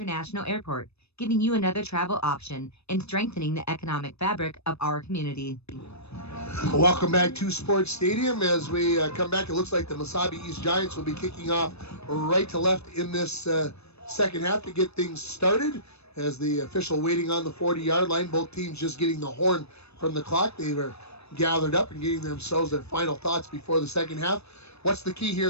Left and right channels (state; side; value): late; right; 0.79 ms